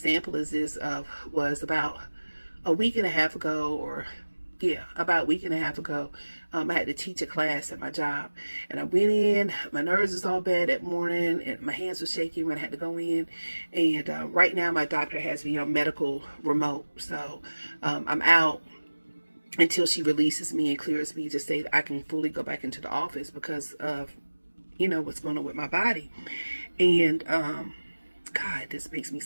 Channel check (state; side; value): inverted; both; correlation -1.00